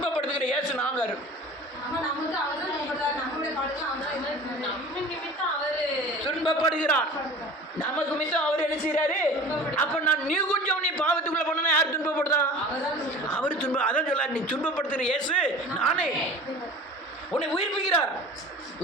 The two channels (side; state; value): both; normal; correlation 0.40